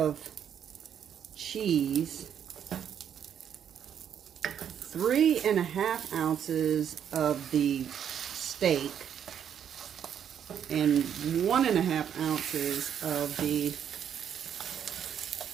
cheese, 3.5 ounces of the steak, and 1.5 ounces of the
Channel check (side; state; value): left; quieter; 8.8 dB